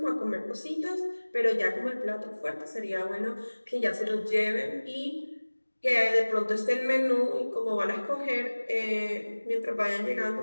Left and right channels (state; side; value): inverted; both; correlation -1.00